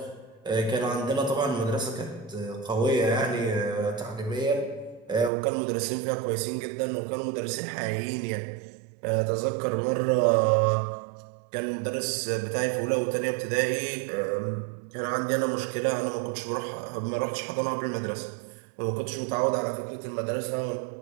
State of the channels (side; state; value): left; drops out; at 5.3 s